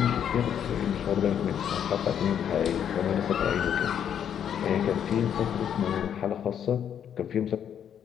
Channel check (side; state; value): right; quieter; 8.9 dB